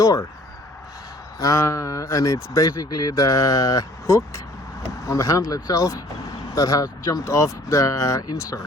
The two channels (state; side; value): normal; both; correlation 0.56